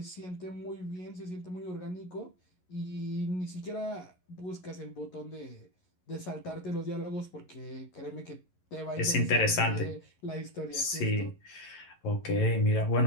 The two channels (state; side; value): late; right; 11 ms